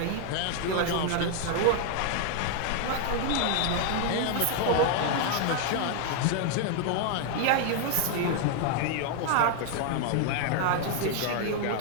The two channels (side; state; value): both; different; correlation 0.00